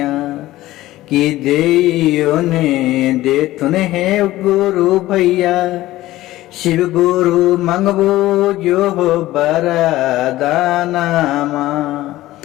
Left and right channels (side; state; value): right; quieter; 16.3 dB